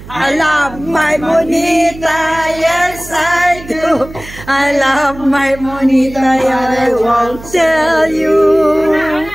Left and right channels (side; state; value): right; noise; hum, 16 dB below the sound